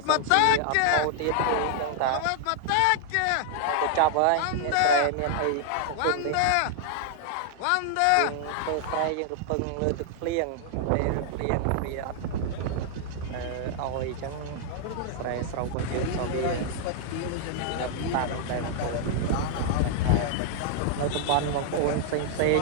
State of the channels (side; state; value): both; different; correlation -0.01